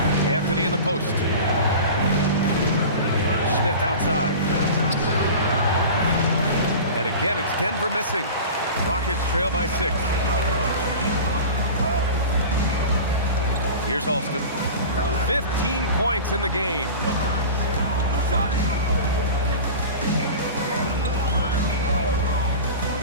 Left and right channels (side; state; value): both; inverted; correlation -0.34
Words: Anthony in the post. Smith outside. And again, it's Denver missing. Rockets trail by 6. Here's Alston. 15 points in the game.